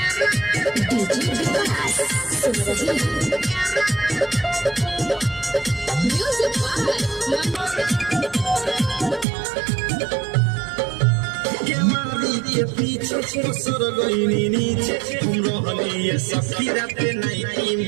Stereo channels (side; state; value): left; drops out; at 9.2 s